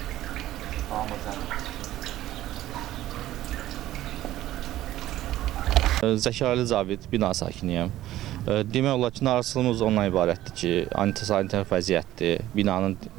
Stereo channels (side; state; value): left; quieter; 14.3 dB